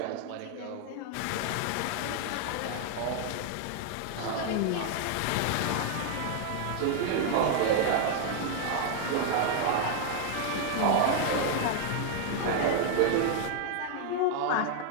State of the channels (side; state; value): both; different; correlation 0.00